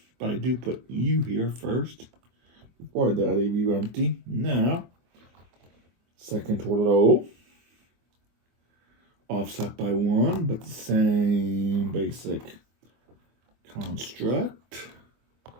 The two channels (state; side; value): late; left; 24 ms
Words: But I do put you here first. Before that, I leave you empty. Now, second row. Offset by 1, but the same basic construct.